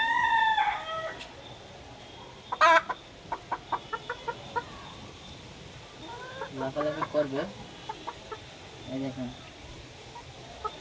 লাফালাফি করবে। এই দেখেন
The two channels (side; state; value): both; identical; correlation 1.00